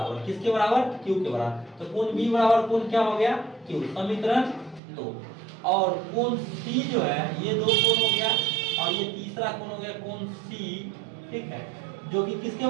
किसके बराबर, क्यू के बराबर। तो कोण बी बराबर कोण क्या हो गया, क्यू, समीकरण 2। और कोण सी जो है ये दो कोण हो गया, और ये तीसरा कोण हो गया कोण सी, ठीक है, जो कि किसके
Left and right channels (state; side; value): drops out; left; at 4.8 s